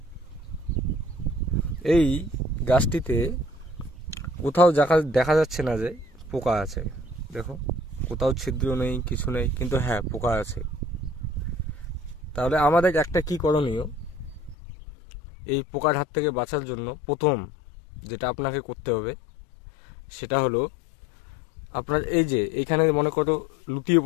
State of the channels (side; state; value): right; drops out; at 14.6 s